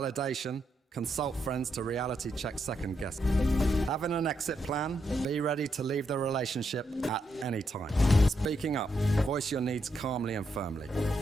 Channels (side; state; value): both; normal; correlation 0.80